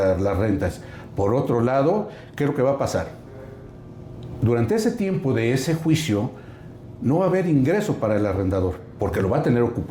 rentas. Por otro lado, ¿qué es lo que va a pasar? Durante ese tiempo de ese juicio no va a haber ingreso para el arrendador, porque lo va a tener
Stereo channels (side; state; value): both; identical; correlation 1.00